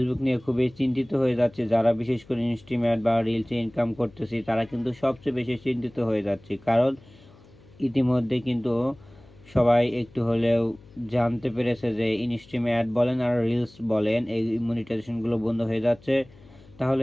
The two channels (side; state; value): left; noise; hum, 25 dB below the sound